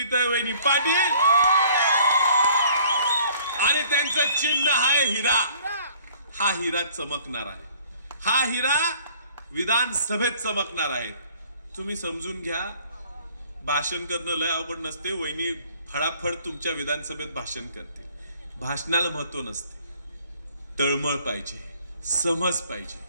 पाटील आणि त्यांचं चिन्ह आहे हिरा. हा हिरा चमकणार आहे, हा हिरा विधानसभेत चमकणार आहे. तुम्ही समजून घ्या, भाषण करणं लय अवघड नसते. वहिनी फडाफड तुमच्या विधानसभेत भाषण करते. भाषणाला महत्व नसते, तळमळ पाहिजे, समज पाहिजे,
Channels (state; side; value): inverted; both; correlation -0.55